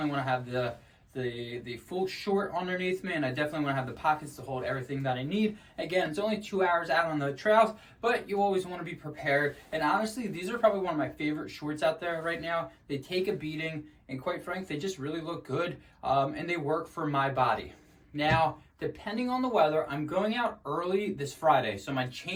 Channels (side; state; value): both; identical; correlation 1.00